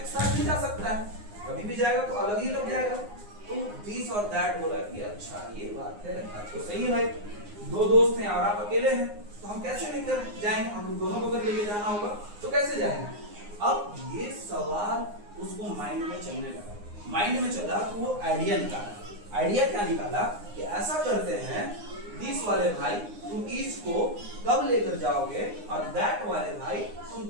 साथ नहीं जा सकता है. कभी भी जाएगा तो अलग ही लग जाएगा. तो दिस और दैट बोला कि अच्छा ये बात है, तो सही है भाई. दो दोस्त हैं और आप अकेले हैं तो हम कैसे लेकर जाएंगे? हम दोनों को अगर लेके जाना होगा तो कैसे जाएंगे? अब ये सवाल उसको माइंड में चलने लगा. माइंड में चला तो वो आइडिया निकाला. आइडिया क्या निकाला कि ऐसा करते हैं, दिस वाले भाई तुम इज को कब लेकर जाओगे और दैट वाले भाई तुम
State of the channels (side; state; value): left; late; 9.7 ms